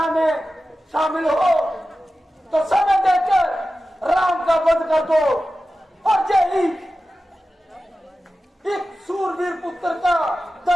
में शामिल हो, तो समय देकर राम का वध कर दो और यही एक सूरवीर पुत्र का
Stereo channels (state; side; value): normal; both; correlation 0.94